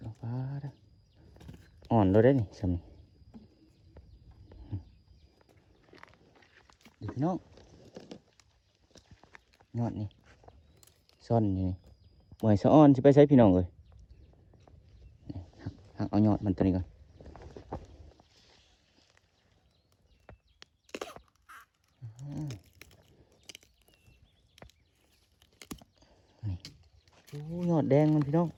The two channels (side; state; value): both; identical; correlation 1.00